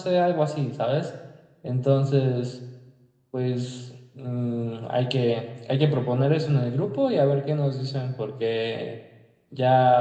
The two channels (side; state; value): both; identical; correlation 1.00